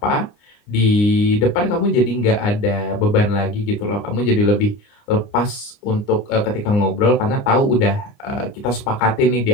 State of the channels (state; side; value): late; right; 29 ms